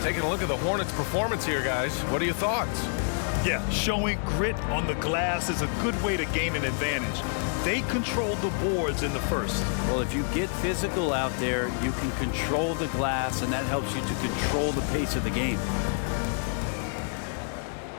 Taking a look at the Hornets' performance here, guys. What are your thoughts? Yeah, showing grit on the glass is a good way to gain an advantage. They controlled the boards in the first. Well, if you get physical out there, you can control the glass, and that helps you to control the pace of the game.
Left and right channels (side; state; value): right; silent; 59 dB below the other